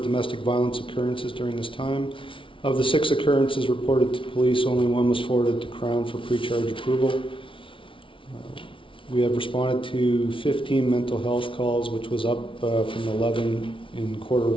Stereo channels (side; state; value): right; late; 0.25 ms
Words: domestic violence occurrences during this time. Of the 6 occurrences reported to police, only 1 was forwarded to Crown for pre-charge approval. We have responded to 15 mental health calls, which was up from 11 in quarter